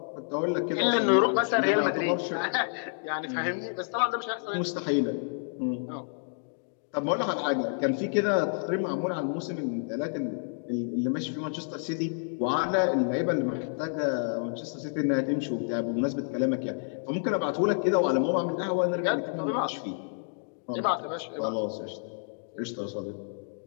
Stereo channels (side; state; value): right; silent; digital silence